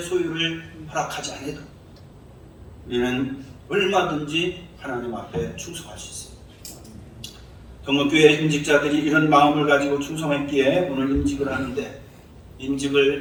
소유를 허락하지 않아도 우리는 얼마든지 하나님 앞에 충성할 수 있습니다. 동목교회 임직자들이 이런 마음을 가지고 충성했기에 오늘 임직을 하는데,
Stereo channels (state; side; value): identical; both; correlation 1.00